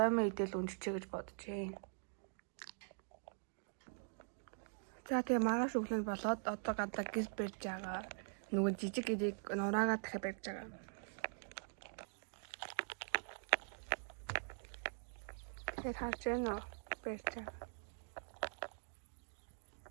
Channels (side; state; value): left; silent; digital silence